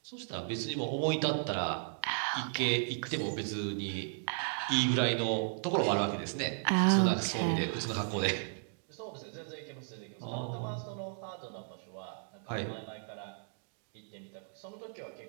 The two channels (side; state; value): left; silent; digital silence